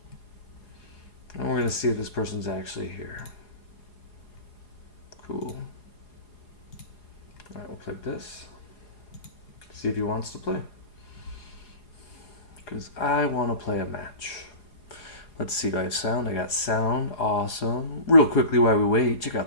And we're going to see if this person's actually here. Cool. Alright, we'll click this. See if he wants to play. Because I want to play a match. Let's see, do I have sound? I got sound. Awesome. Real quickly while we wait, check out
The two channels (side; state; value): right; late; 4.8 ms